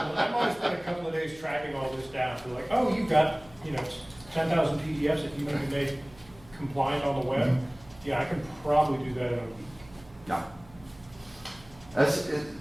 spent a couple of days tracking all this down. So like, oh, you've got, 10,000 PDFs that you need to make compliant on the web. Yeah, I can probably do that in a week. No.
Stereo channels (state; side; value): noise; right; hum, 23 dB below the sound